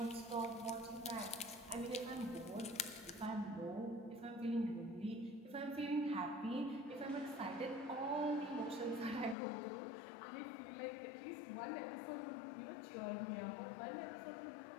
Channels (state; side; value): drops out; right; at 9.3 s